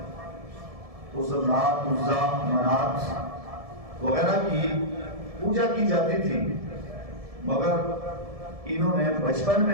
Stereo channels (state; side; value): late; left; 1.7 ms